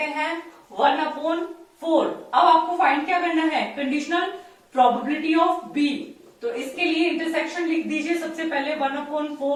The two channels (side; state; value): both; identical; correlation 1.00